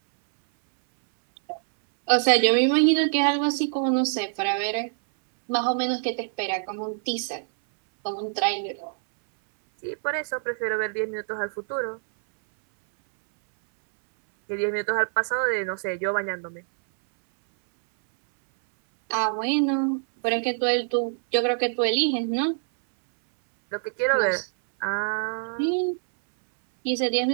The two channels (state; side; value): silent; left; 61 dB below the other